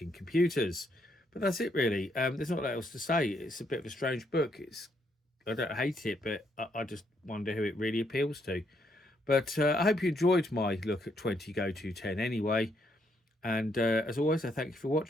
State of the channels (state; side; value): normal; both; correlation 0.74